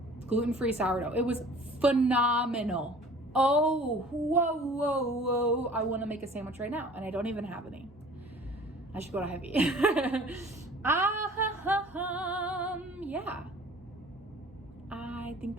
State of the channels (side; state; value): both; normal; correlation 0.48